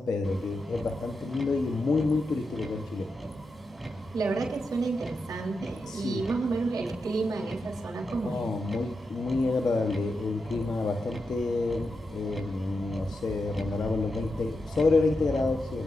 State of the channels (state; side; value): normal; both; correlation 0.87